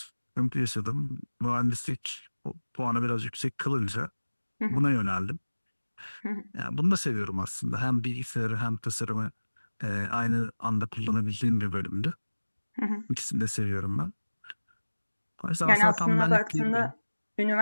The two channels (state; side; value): inverted; both; correlation -1.00